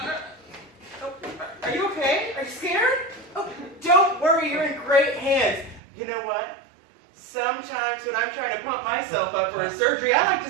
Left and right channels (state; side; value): drops out; left; at 5.8 s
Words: Are you okay? Are you scared? Oh, don't worry, you're in great hands. You know what? Sometimes when I'm trying to pump myself up for a surgery, I like